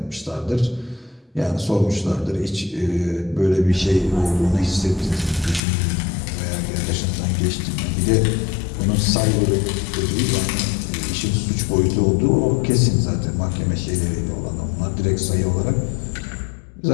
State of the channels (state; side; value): drops out; right; at 5.6 s